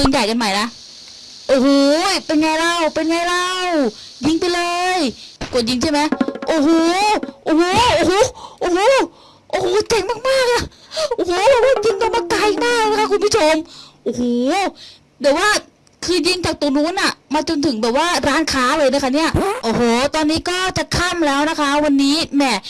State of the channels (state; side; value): identical; both; correlation 1.00